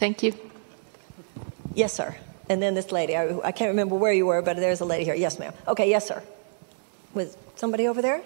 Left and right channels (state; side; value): silent; left; 61 dB below the other